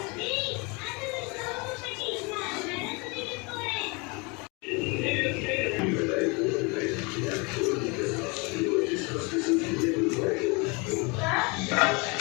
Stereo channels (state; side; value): quieter; right; 29.3 dB